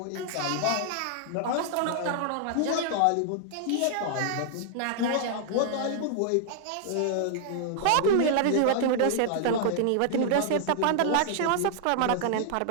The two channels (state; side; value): different; both; correlation -0.01